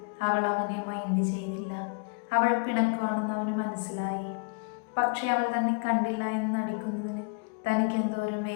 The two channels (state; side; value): quieter; right; 34.9 dB